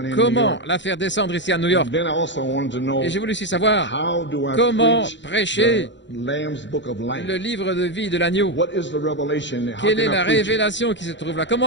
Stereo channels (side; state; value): right; late; 0.53 ms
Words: Comment la faire descendre ici à New York? Et j'ai voulu aussi savoir comment prêcher le livre de vie de l'agneau. Quelle est la révélation qui se trouve là?